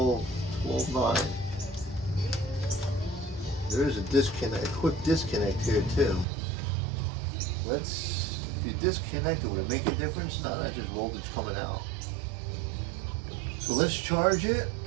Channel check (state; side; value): drops out; left; at 6.2 s